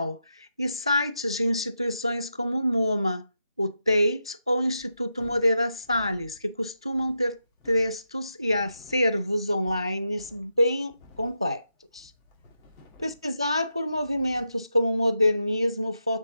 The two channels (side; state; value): both; inverted; correlation -0.86